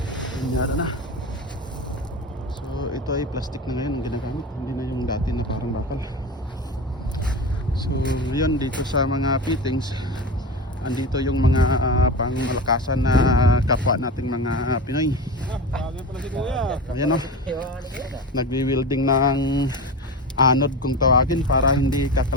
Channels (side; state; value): both; normal; correlation 0.26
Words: linyada na. So ito ay plastic na ngayon ang ginagamit, hindi na yung dati na parang bakal. So yun, dito sa mga fittings andito yung mga pangmalakasan na kapwa nating mga Pinoy. Ayan o, nagwi-welding ng anod kung tawagin para hindi